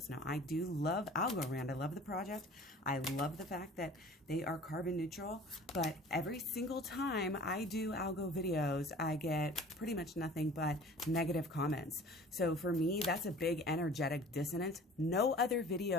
Now, I do love Algorand. I love the project. I love the fact that they are carbon neutral, but every single time I do algo videos, I get pretty much nothing but negative comments. So for me, that's a big energetic dissonance. No other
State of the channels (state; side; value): normal; both; correlation 0.45